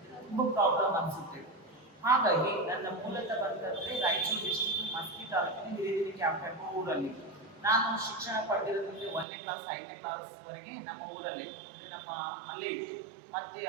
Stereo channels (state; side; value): drops out; left; at 9.2 s